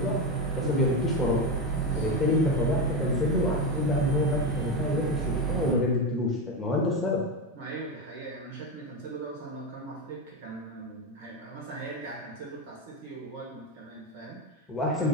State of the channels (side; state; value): both; normal; correlation 0.13